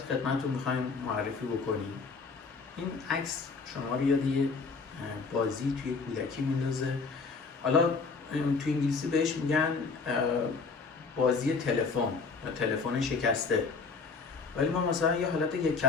می‌خوایم معرفی بکنیم. این عکس شما رو یاد یه بازی توی کودکی میندازه. حالا توی انگلیسی بهش میگن بازی تلفن یا تلفن شکسته، ولی ما مثلا یه حالت یک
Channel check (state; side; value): quieter; right; 4.6 dB